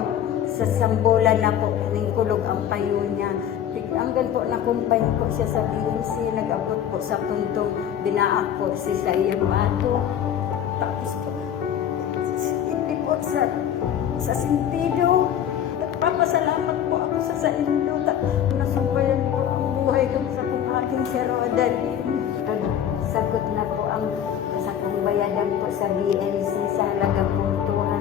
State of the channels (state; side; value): quieter; right; 9.8 dB